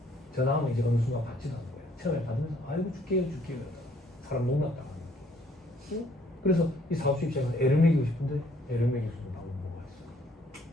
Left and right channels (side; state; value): both; normal; correlation 0.64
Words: 전화하면 이제 어느 순간 받지도 않는 거예요. 처음에 받으면서 아이고 줄게요. 사람 농락당하는 거예요. 응? 그래서 이 사업주 입장에서 애를 먹이고 싶은데 애를 먹일 수 있는 방법은 뭐가 있어요?